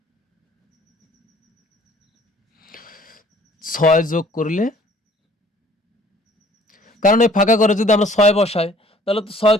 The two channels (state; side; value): normal; both; correlation 0.56